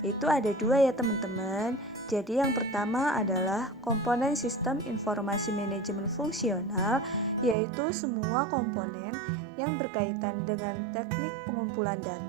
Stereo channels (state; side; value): drops out; left; at 7.6 s